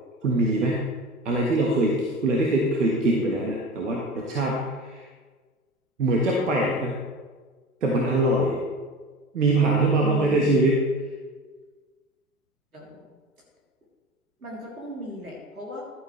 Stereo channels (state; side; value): normal; both; correlation 0.34